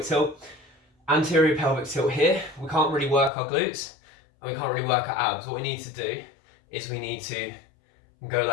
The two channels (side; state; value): right; drops out; at 3.3 s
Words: tilt. Anterior pelvic tilt here, we can't really work our glutes and we can't really work our abs. What we need to do is we need to go